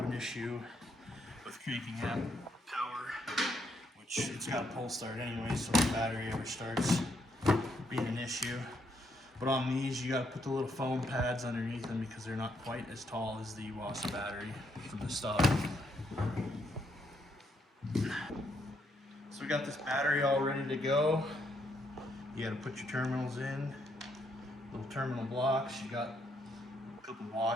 an issue with cranking app power, which it's got a pull start anyway, so if the battery ever starts being an issue. But on these, you got to put the little foam pads underneath them because they're not quite as tall as the Iwasa battery from the stock. So we got this battery all ready to go. You got to put your terminals in, little terminal blocks. You got a couple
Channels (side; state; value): both; normal; correlation 0.74